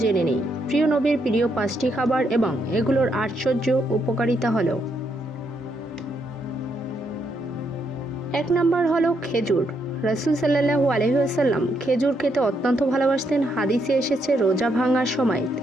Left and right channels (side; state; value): both; normal; correlation 0.77